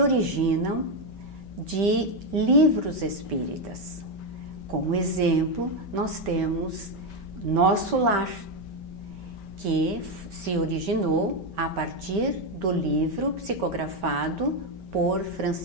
de livros espíritas. Como exemplo, nós temos Nosso Lar, que se originou a partir do livro psicografado por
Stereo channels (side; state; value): left; late; 5.2 ms